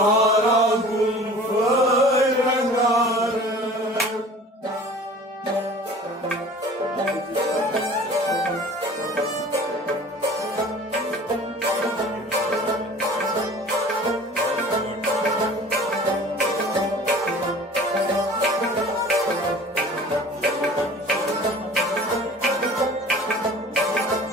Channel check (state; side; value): normal; both; correlation 0.44